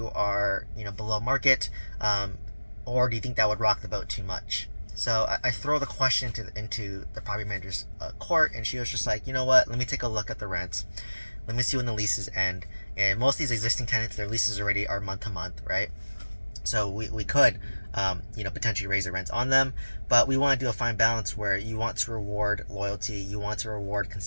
are below market, or do you think that would rock the boat too much? So I throw the question into the property manager's court, and she was just like, you know what? Let me take a look at the rents. Let me see when the leases end. And most of these existing tenants, their leases already are month to month, right? So we could, potentially raise the rents on them, but we want to do a fine balance where you want to reward loyalty, you want to reward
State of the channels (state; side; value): inverted; both; correlation -1.00